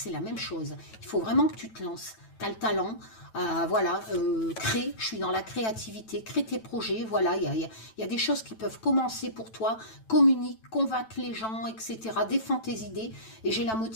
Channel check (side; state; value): right; late; 9.1 ms